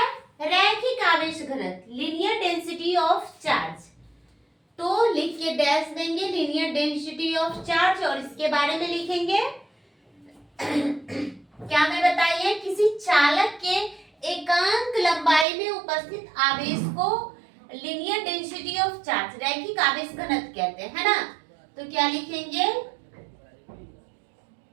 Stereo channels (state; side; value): drops out; left; at 15.5 s